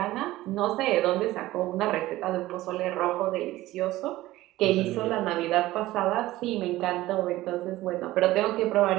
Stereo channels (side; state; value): left; quieter; 16.8 dB